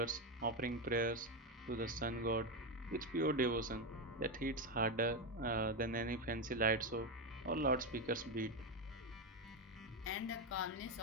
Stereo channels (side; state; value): both; normal; correlation 0.10